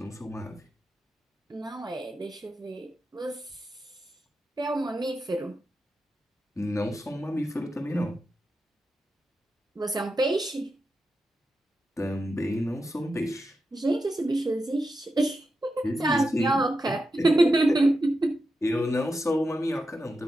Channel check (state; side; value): normal; both; correlation 0.88